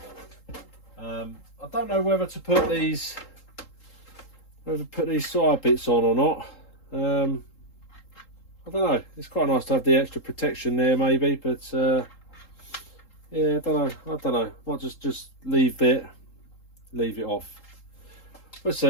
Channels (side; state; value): right; late; 3.8 ms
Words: I don't know whether to put these side bits on or not. I don't know. It's quite nice to have the extra protection there, maybe, but yeah, I don't know. Might just leave it off. Let's